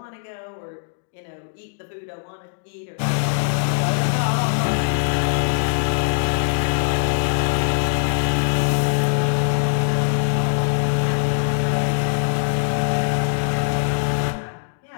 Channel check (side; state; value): right; silent; digital silence